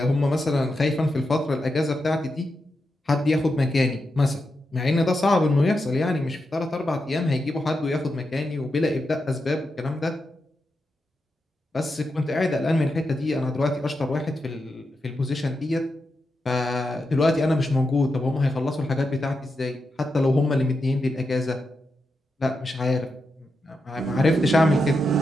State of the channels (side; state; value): both; normal; correlation 0.87